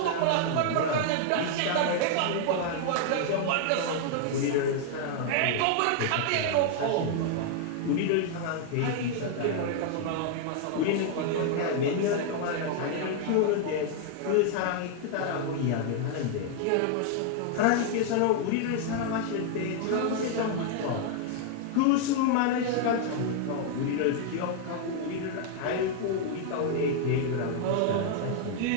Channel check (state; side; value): different; both; correlation 0.00